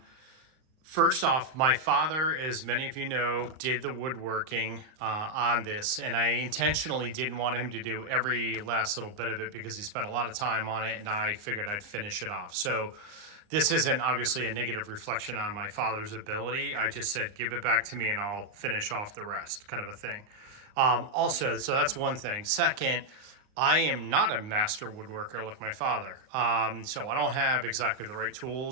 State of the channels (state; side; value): late; left; 39 ms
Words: first off, my father, as many of you know, did the woodworking on this, and I intentionally didn't want him to do every last little bit of it because he spent a lot of time on it, and I figured I'd finish it off. So, this isn't obviously a negative reflection on my father's ability. I just said, give it back to me and I'll finish off the rest, kind of a thing. Also, so that's one thing. Second, I am not a master woodworker like my father. So I don't have exactly the right